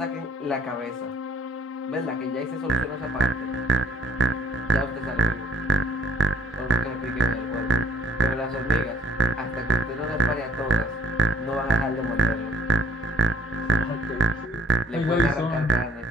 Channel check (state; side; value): normal; both; correlation 0.59